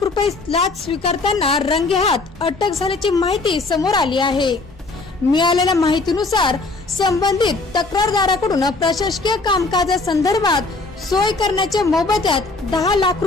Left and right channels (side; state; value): right; quieter; 3.5 dB